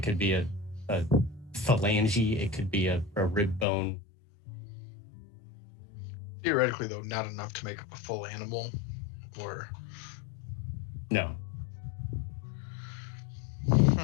could be a phalange. It could be a rib bone. Theoretically, though, not enough to make up a full animal, or no.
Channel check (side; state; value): right; drops out; at 3.7 s